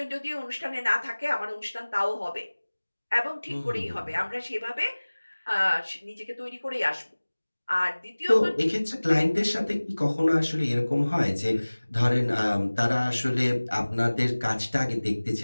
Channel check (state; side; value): inverted; both; correlation -1.00